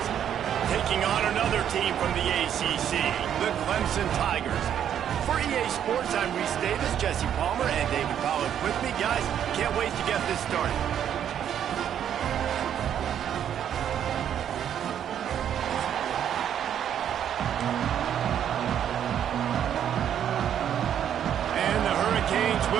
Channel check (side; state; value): left; quieter; 9.6 dB